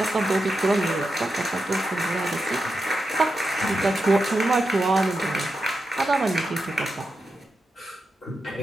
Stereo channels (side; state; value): both; normal; correlation 0.88